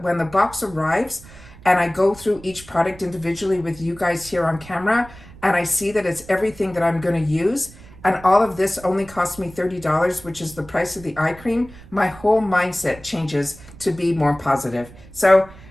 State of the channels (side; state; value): right; noise; rumble, 20 dB below the sound